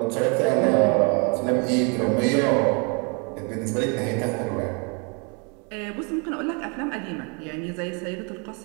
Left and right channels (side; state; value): left; quieter; 33.6 dB